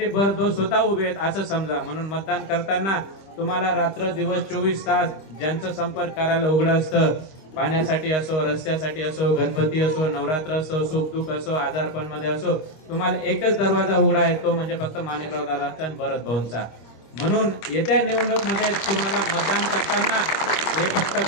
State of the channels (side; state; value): right; late; 26 ms